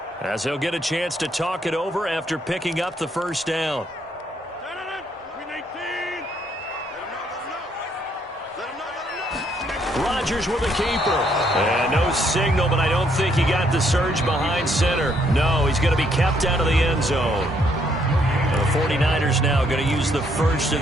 as they'll get a chance to talk it over after picking up the 1st down. Rodgers with a keeper. And no signal, but I don't think he got the surge behind center. No, he's going to be kept out of the end zone. 49ers now going to use the first of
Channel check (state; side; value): normal; both; correlation 0.71